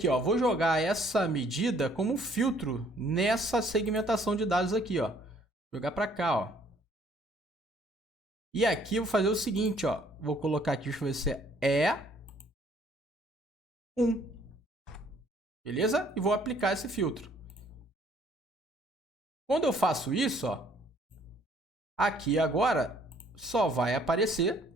ó? Vou jogar essa medida como filtro nessa segmentação de dados aqui, ó. Jogar para cá, ó. E aqui eu vou fazer o seguinte, ó. Vou colocar aqui, deixa eu ver se é 1. Beleza? E vou aplicar esse filtro. Quando eu faço isso, ó, aqui agora só vai aparecer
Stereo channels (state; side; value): normal; both; correlation 0.61